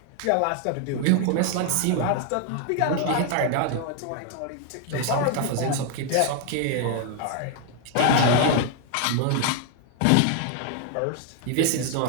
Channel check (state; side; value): different; both; correlation 0.00